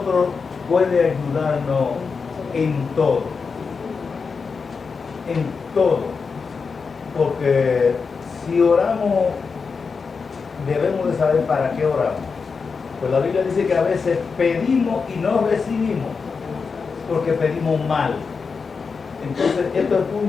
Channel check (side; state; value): right; quieter; 5.1 dB